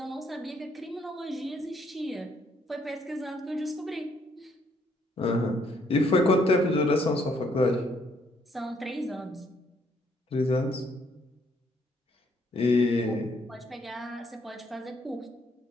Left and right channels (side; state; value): both; normal; correlation 0.70